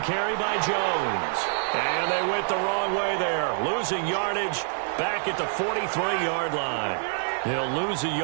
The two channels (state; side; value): silent; left; digital silence